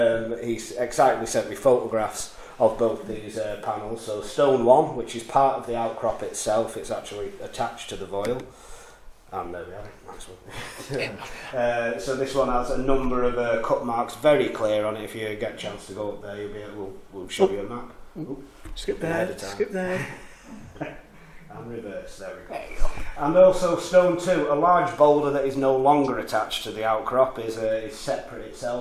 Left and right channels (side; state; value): both; identical; correlation 1.00